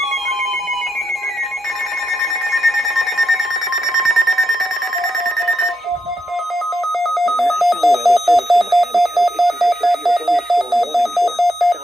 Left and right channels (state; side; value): normal; both; correlation 0.82